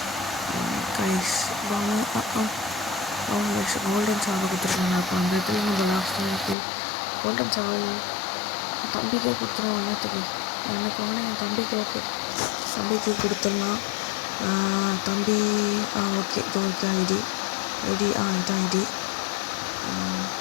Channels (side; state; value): right; drops out; at 6.6 s